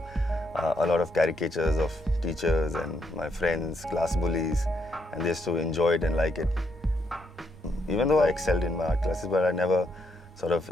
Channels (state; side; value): normal; both; correlation 0.77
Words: a lot of caricatures of teachers and my friends, class bullies, and they used to enjoy it and like it. Even though I excelled in my art classes, but I never sort of